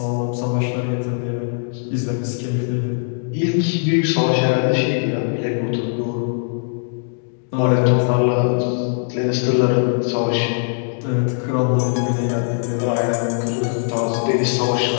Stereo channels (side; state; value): right; silent; digital silence